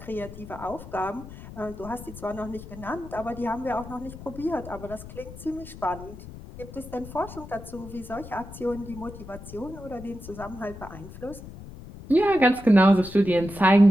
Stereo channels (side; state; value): left; noise; rumble, 14 dB below the sound